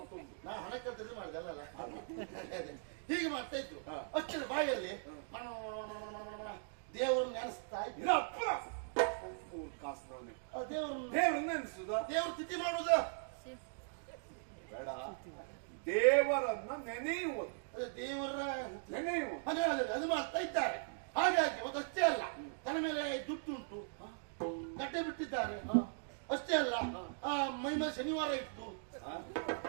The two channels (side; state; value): left; silent; digital silence